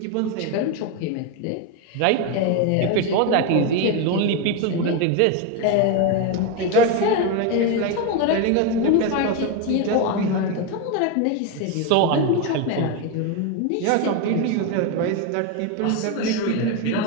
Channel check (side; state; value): both; different; correlation 0.02